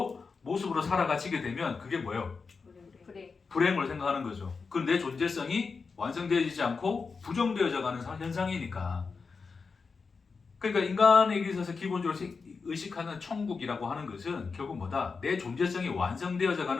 모습으로 살아가지게 되면 그게 뭐예요? 불행으로 생각하는 거죠. 그 내 존재성이 완성되어지지 않고 부정되어져 가는 현상이니까. 그러니까 인간에게 있어서 기본적으로 의식하는 천국이라고 하는 것은 결국 뭐다? 내 존재성이 완성되어져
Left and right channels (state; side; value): quieter; right; 4.9 dB